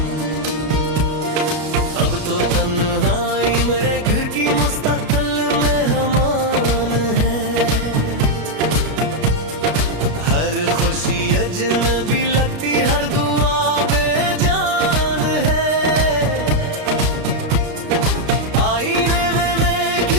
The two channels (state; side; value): late; left; 33 ms